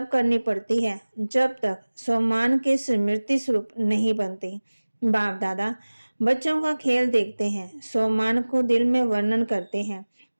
करनी पड़ती है जब तक सम्मान के स्मृति स्वरूप नहीं बनती। बाप दादा बच्चों का खेल देखते हैं, सम्मान को दिल में वर्णन करते हैं।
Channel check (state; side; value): inverted; both; correlation -1.00